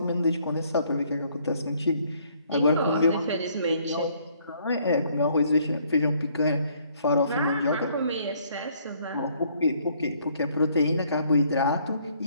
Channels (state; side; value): inverted; both; correlation -0.65